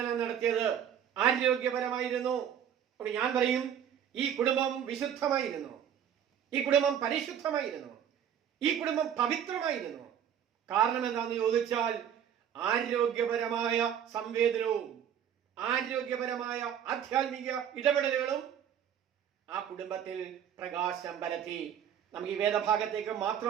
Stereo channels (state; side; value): quieter; left; 9.1 dB